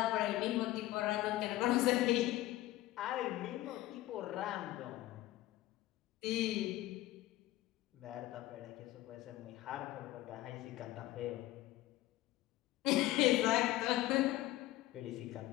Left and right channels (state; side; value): quieter; right; 16.3 dB